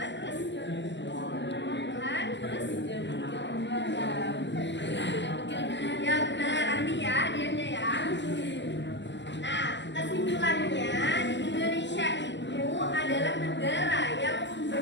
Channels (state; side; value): late; right; 0.52 ms